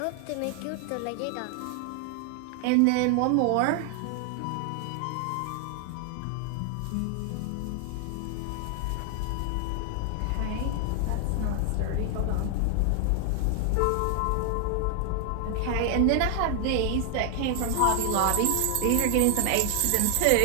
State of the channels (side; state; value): both; different; correlation 0.00